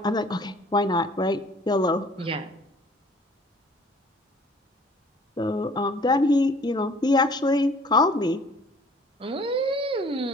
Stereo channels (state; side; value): normal; both; correlation 0.54